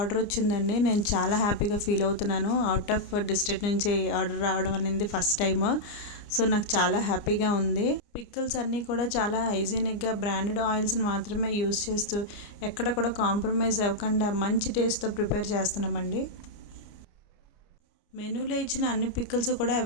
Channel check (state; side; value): late; right; 29 ms